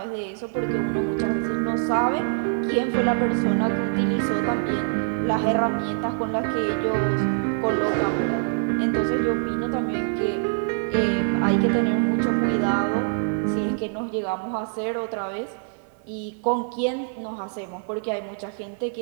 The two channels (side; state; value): left; silent; 57 dB below the other